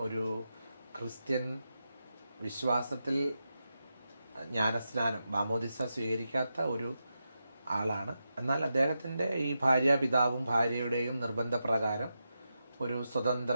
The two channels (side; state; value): both; inverted; correlation -0.88